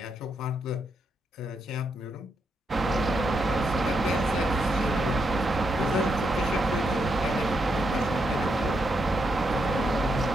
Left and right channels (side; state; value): both; normal; correlation 0.81